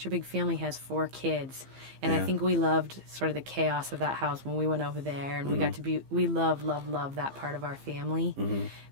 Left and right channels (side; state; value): left; late; 15 ms